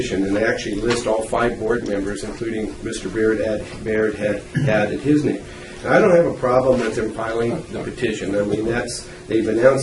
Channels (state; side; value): identical; both; correlation 1.00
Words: and they actually list all 5 board members, including Mr. Baird had added his name. Now, I don't have a problem with them filing the petition. I mean, they've